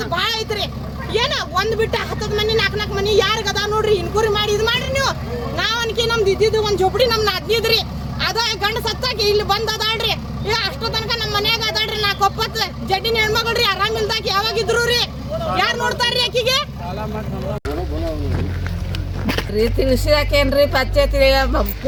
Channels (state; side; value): identical; both; correlation 1.00